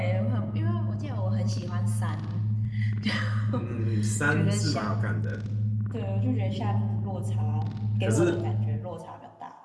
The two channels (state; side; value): identical; both; correlation 1.00